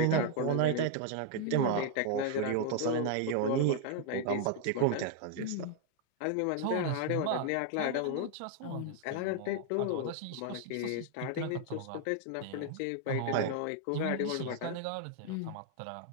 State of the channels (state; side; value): different; both; correlation 0.00